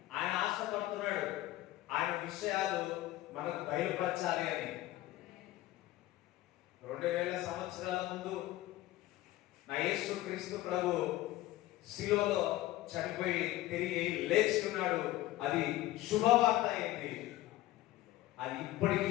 ఆయన ఆశపడుతున్నాడు ఆయన విషయాలు మనకు బయలుపరచాలి అని. 2000 సంవత్సరాల ముందు నా యేసు క్రీస్తు ప్రభు శిలువలో చనిపోయి తిరిగి లేచి ఉన్నాడు. అది శుభవార్త అయింది. అది ఇప్పటికీ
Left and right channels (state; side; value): quieter; right; 15.9 dB